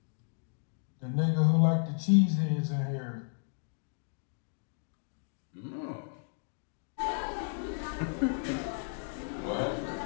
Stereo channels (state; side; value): silent; right; digital silence